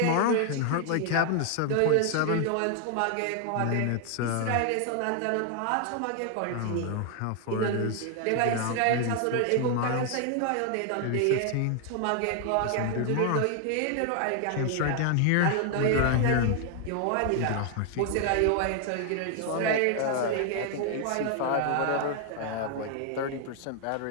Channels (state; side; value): different; both; correlation 0.00